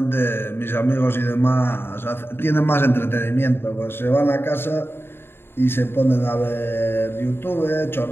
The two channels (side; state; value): right; late; 0.11 ms